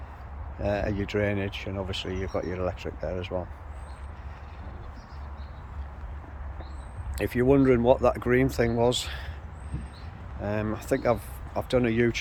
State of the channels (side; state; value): both; identical; correlation 1.00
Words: your drainage, and obviously you've got your electric there as well. If you're wondering what that green thing was, I think I've done a